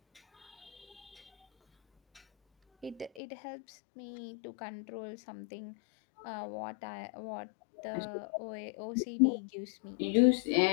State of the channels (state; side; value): drops out; right; at 3.2 s